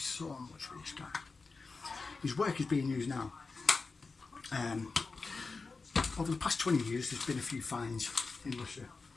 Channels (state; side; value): quieter; right; 4.2 dB